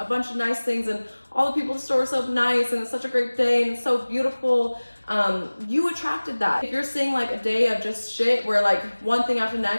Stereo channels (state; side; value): inverted; both; correlation -1.00